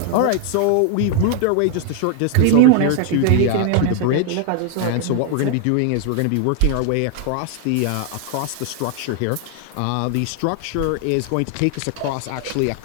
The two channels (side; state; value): both; different; correlation 0.00